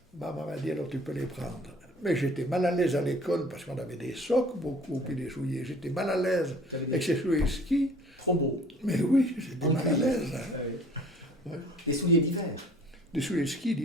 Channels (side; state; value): both; normal; correlation 0.51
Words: Maman m'a dit, alors tu peux les prendre. Mais j'étais mal à l'aise à l'école parce qu'on avait des socs beaucoup, puis des souliers. J'étais mal à l'aise avec ces souliers de ski. Trop beau. Mais oui, j'étais mal à l'aise. Hein. Ouais. Ouais. Des souliers d'hiver. Des souliers de ski